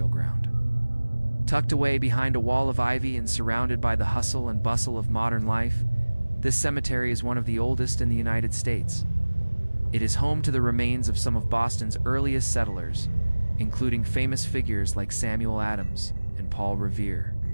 ground. Tucked away behind a wall of ivy and surrounded by the hustle and bustle of modern life, this cemetery is one of the oldest in the United States. It is home to the remains of some of Boston's earliest settlers, including famous figures like Samuel Adams and Paul Revere.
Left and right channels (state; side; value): inverted; both; correlation -1.00